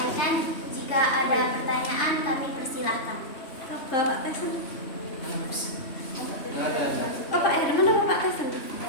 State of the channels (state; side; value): late; right; 3.2 ms